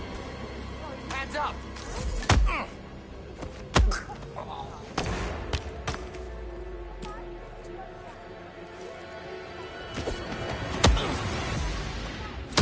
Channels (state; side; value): identical; both; correlation 1.00